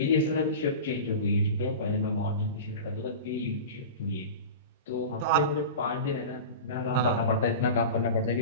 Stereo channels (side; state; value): both; inverted; correlation -0.31